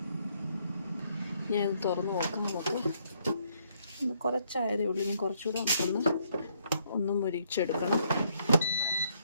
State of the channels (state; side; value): inverted; both; correlation -0.71